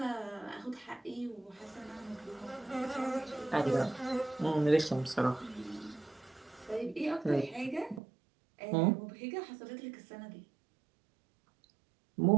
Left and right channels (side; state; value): left; drops out; at 8.0 s